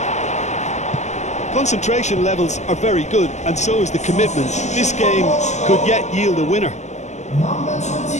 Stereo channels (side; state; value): right; late; 0.34 ms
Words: Concentration levels are very good, and so is the commitment. This game could yet yield a winner. Number